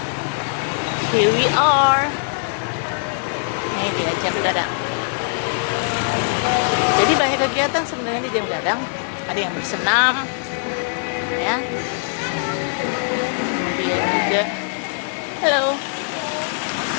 here we are. Ini dia Jam Gadang. Jadi banyak kegiatan sebenarnya di Jam Gadang. Ada yang bersenam, ya. Kemudian juga, halo.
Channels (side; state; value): right; silent; 62 dB below the other